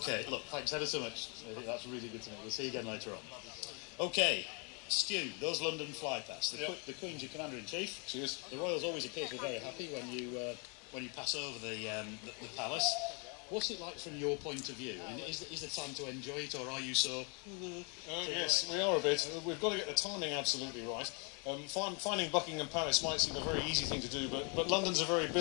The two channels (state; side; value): quieter; right; 35.2 dB